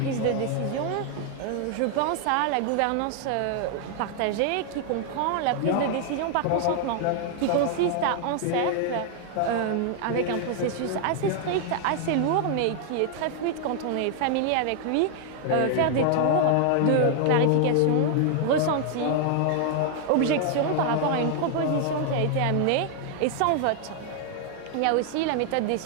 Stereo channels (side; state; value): both; different; correlation 0.00